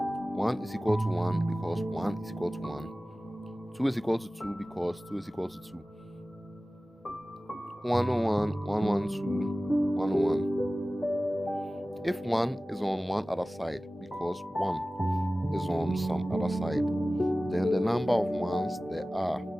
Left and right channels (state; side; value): normal; both; correlation 0.97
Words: 1 is equal to 1 because 1 is equal to 1. 2 is equal to 2 because 2 is equal to 2. 101, 112, 101. If 1 is on one other side because 1 is on some other side, then the number of ones there are,